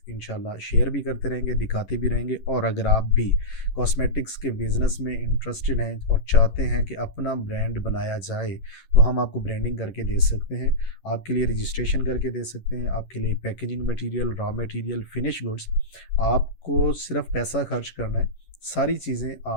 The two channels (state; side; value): late; right; 11 ms